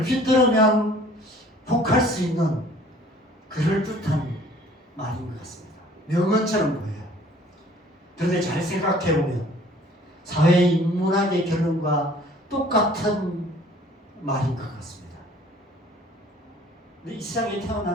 들으면 혹할 수 있는 그럴듯한 말인 것 같습니다. 명언처럼 보여요. 그런데 잘 생각해보면 사회인문학의 결론과 똑같은 말인 것 같습니다. 이 세상에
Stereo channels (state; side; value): normal; both; correlation 0.53